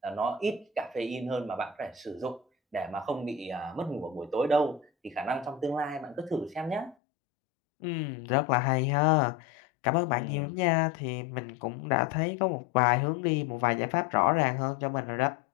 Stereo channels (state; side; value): drops out; right; at 7.0 s